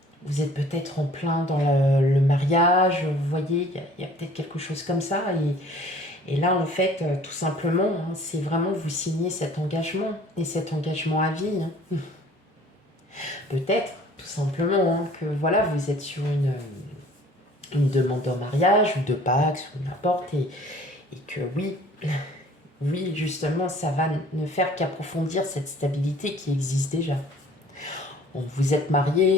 Vous êtes peut-être en plein dans le mariage, vous voyez, il y a peut-être quelque chose comme ça. Et là, en fait, tout simplement, hein, c'est vraiment vous signer cet engagement, et cet engagement à vie, hein. Peut-être, tout simplement, hein, que voilà, vous êtes sur une demande en mariage, ou de Pax, ou n'importe, et que oui, oui, justement, ça va ne faire qu'approfondir cette stabilité qui existe déjà. Bon, vous êtes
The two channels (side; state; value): both; normal; correlation 0.52